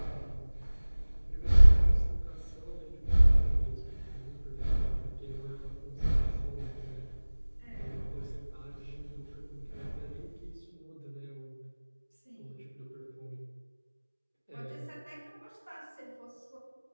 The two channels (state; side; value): inverted; both; correlation -1.00